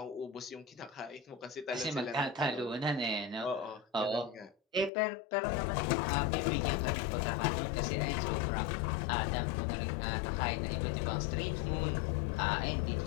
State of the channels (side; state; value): right; drops out; at 4.9 s